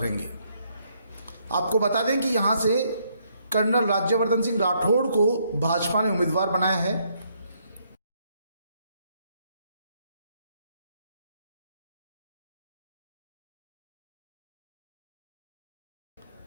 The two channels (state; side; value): inverted; both; correlation -0.72